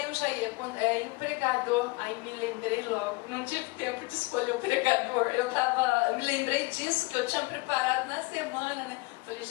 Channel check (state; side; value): quieter; right; 24.9 dB